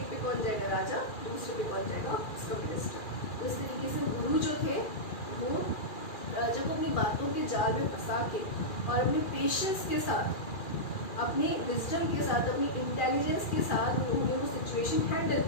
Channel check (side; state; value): right; late; 2.4 ms